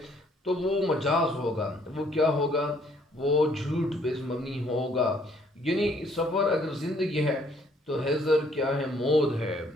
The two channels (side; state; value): both; normal; correlation 0.64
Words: تو وہ مجاز ہوگا۔ وہ کیا ہوگا؟ وہ جھوٹ پہ مبنی ہوگا۔ یعنی سفر اگر زندگی ہے تو حضر کیا ہے؟ موت ہے۔